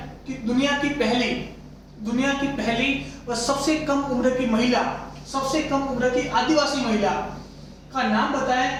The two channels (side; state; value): both; identical; correlation 1.00